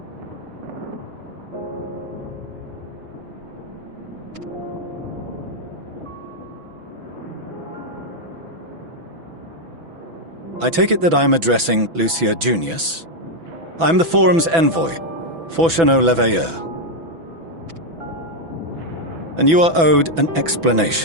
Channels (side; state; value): left; late; 6.0 ms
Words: I take it that I'm addressing Lucia Junius. I'm the Forum's envoy, Fortuneau Leveilleur. And you are owed an